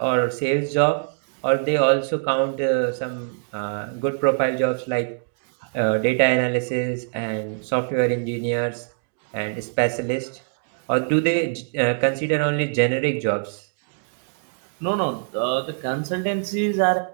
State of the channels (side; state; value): left; silent; digital silence